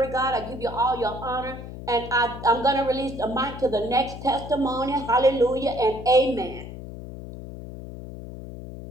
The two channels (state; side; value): noise; left; hum, 11 dB below the sound